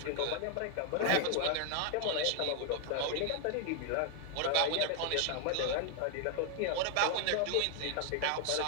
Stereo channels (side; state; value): both; different; correlation 0.00